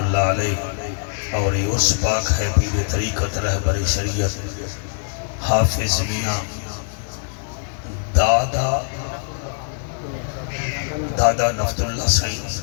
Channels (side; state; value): right; silent; digital silence